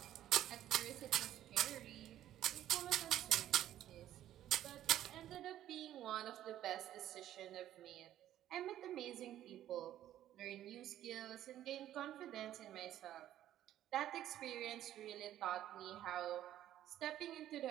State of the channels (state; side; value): quieter; left; 12.4 dB